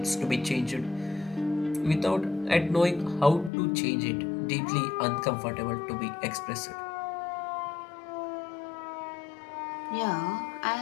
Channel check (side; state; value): right; drops out; at 3.5 s